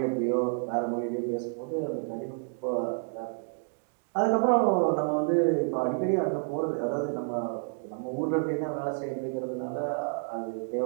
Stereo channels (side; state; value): left; silent; 58 dB below the other